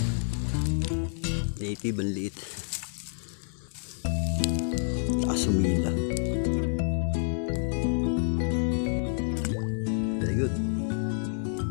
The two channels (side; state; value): right; silent; 57 dB below the other